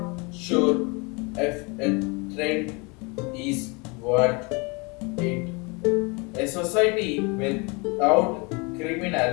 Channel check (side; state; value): right; quieter; 29.5 dB